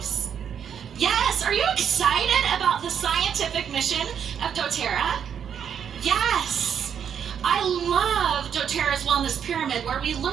Yes. Are you excited about the scientific mission of doTERRA? Yes. I love doTERRA's Wellness Pyramid, where we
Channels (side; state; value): left; quieter; 8.1 dB